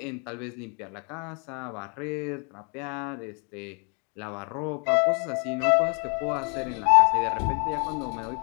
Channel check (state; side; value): quieter; right; 39.3 dB